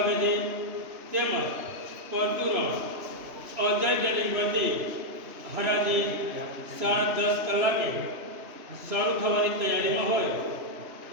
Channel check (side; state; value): left; late; 3.0 ms